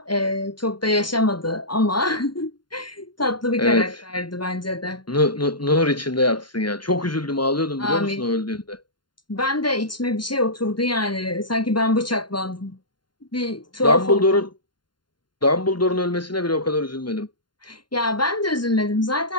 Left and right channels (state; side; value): late; right; 0.71 ms